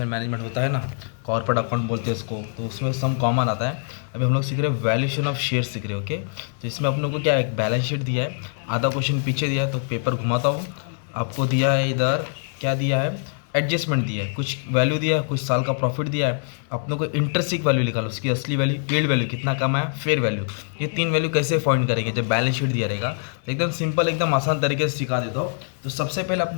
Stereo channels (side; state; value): right; silent; digital silence